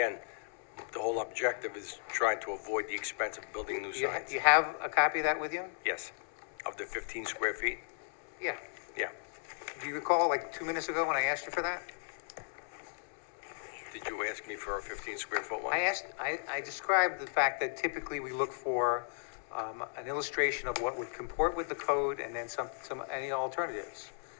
the whole objective is trying to avoid the expense of building new signs. You have a copy of that with you? Yes, of the 15 square feet? Yeah. Yeah. Do you recall, like 2 minutes ago when I asked you for that? Did you ask me for a 15 square foot one? I described the fact that typically we look for an illustration of what would comport with the code and then any alternatives.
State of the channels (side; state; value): right; silent; 54 dB below the other